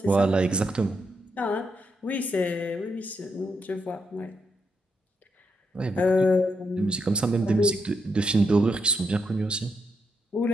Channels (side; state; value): both; normal; correlation 0.80